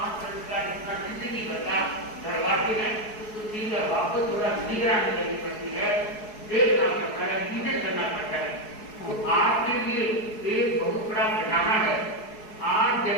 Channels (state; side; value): late; right; 4.7 ms